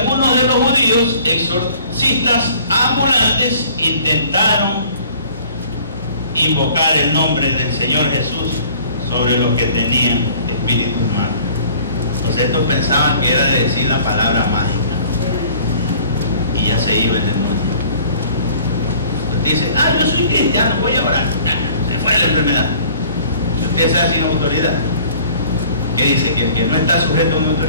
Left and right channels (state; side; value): inverted; both; correlation -0.51